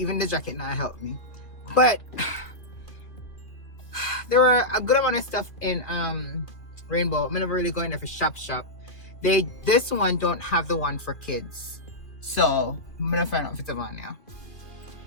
the jacket now helped me. But there were a good amount of stuff in Rainbow. I'm never really going there for shop. This one don't have the one for kids. So I'm gonna find out if it's on now.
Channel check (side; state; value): right; late; 2.6 ms